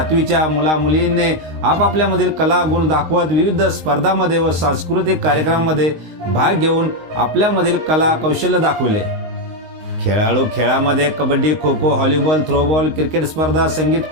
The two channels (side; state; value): left; late; 19 ms